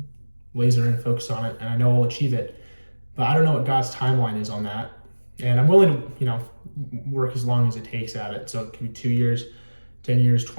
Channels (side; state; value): both; inverted; correlation -1.00